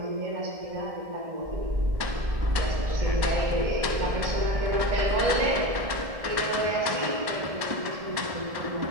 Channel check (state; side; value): late; left; 1.6 ms